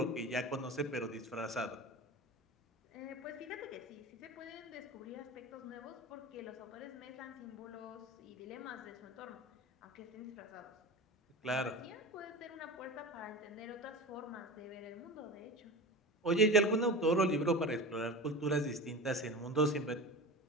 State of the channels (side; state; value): both; normal; correlation 0.30